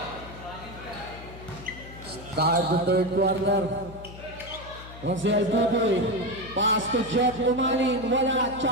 Start the third quarter. Rosel Buboy. Pass to Jeff Umanin. Wala.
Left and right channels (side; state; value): left; noise; hum, 15 dB below the sound